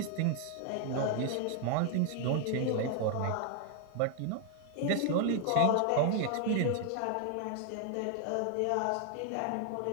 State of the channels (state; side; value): different; both; correlation 0.00